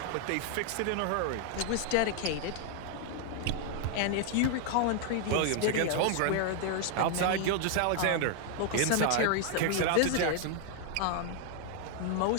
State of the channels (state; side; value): different; both; correlation 0.00